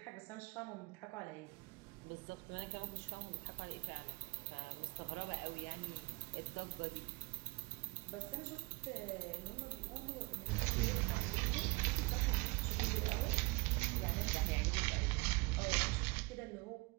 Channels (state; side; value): quieter; left; 25.8 dB